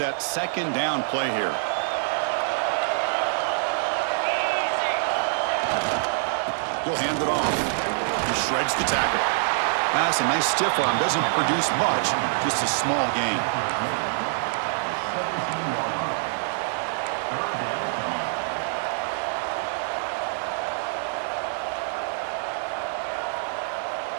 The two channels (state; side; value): silent; left; 61 dB below the other